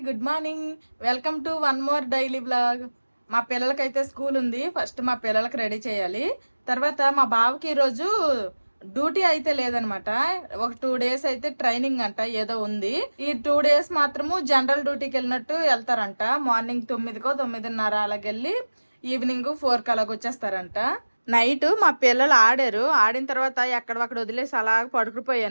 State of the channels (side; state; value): both; inverted; correlation -1.00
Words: good morning. Welcome to one more daily blog. మా పిల్లలకైతే స్కూల్ ఉంది. ఫస్ట్ మా పిల్లలకి రెడీ చేయాలి. తర్వాత మా బావకి ఈరోజు డ్యూటీ అయితే లేదనమాట. ఒక 2 days అయితే ట్రైనింగ్ అంట ఏదో ఉంది. ఈ 2 days మాత్రము జనరల్ డ్యూటీకి వెళ్ళినట్టు వెళ్తారంట. మార్నింగ్ 9కో 9:30 అలాగెళ్ళి ఈవినింగ్ 4కి అలాగ వచ్చేస్తారంట. నైట్ మా పిల్లలు ఆడిన తర్వాత ఎక్కడొక్కడ వదిలేసి అలా